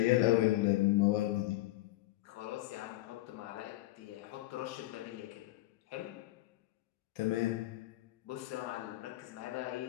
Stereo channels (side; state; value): right; quieter; 17.6 dB